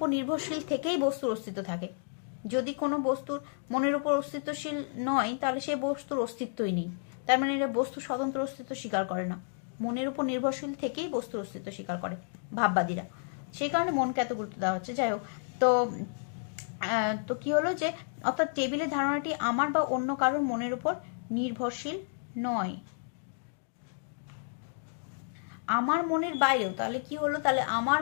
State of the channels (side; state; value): right; silent; digital silence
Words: নির্ভরশীল থেকেই বস্তুর অস্তিত্ব থাকে। যদি কোনো বস্তুর মনের উপর অস্তিত্বশীল নয়, তাহলে সে বস্তুর অস্তিত্বই নেই। তার মানে এরা বস্তুর স্বতন্ত্র অস্তিত্ব স্বীকার করে না, মনের উপর নির্ভরশীল থেকেই বস্তুর অস্তিত্ব স্বীকার করে ভাববাদীরা। সেই কারণে মনকে এত গুরুত্ব দেওয়া হচ্ছে। যাই হোক, তো কি হলো যে, অর্থাৎ টেবিলের ধারণাটি আমার বা অন্য কারোর মনের উপর নির্ভরশীল নয়, আমার মনের বাইরেও। তাহলে কি হলো? তাহলে আমার